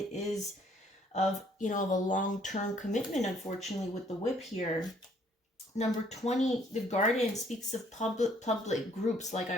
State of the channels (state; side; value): normal; both; correlation 0.63